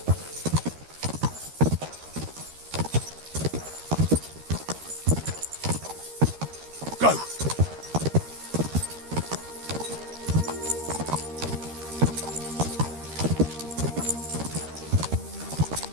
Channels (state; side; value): late; left; 13 ms